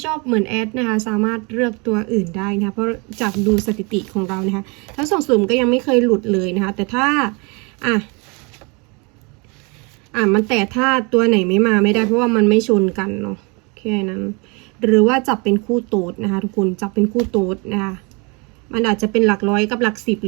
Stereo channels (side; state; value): left; quieter; 30.4 dB